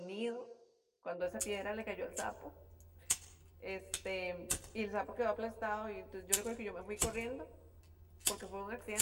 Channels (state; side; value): identical; both; correlation 1.00